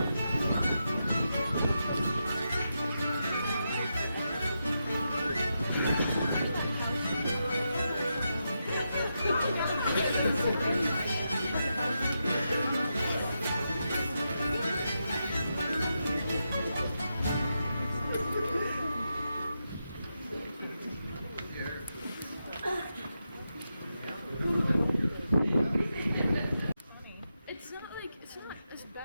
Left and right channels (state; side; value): inverted; both; correlation -0.86